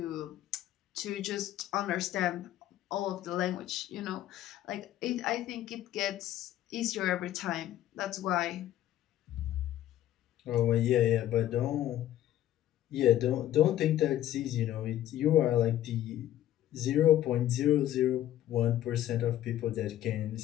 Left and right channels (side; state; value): right; quieter; 12.7 dB